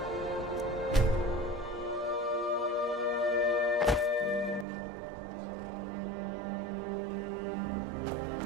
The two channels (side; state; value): left; drops out; at 4.7 s